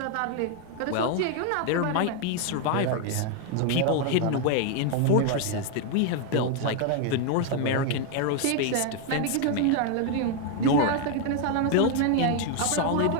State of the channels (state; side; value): different; both; correlation 0.01